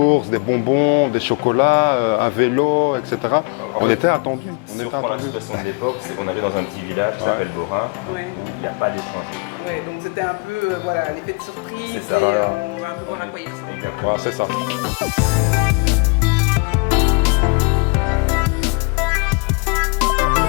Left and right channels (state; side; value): quieter; right; 32.1 dB